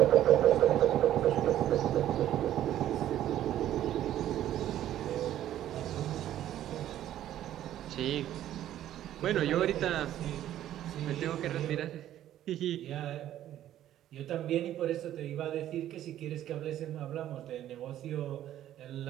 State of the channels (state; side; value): quieter; left; 12.2 dB